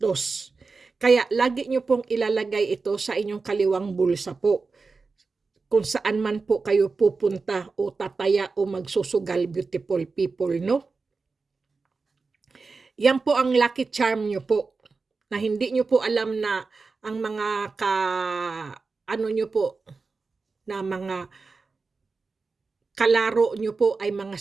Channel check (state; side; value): quieter; left; 4.3 dB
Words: Kaya lagi nyo pong ilalagay ito sa inyong kaliwang bulsa po. Kung saan man po kayo pupunta o tataya o magsusugal, beautiful people, no? Yan po ang lucky charm nyo po. Na hindi nyo po alam na ang mga nyo po, na mga kalaro nyo po ay mga